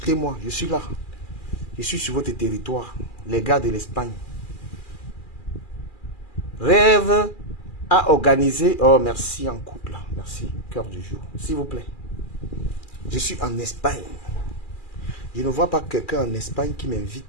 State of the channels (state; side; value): late; right; 2.4 ms